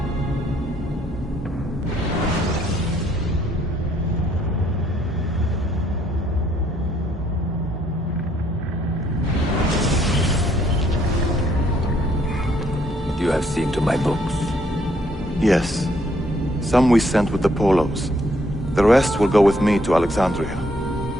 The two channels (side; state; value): both; normal; correlation 0.68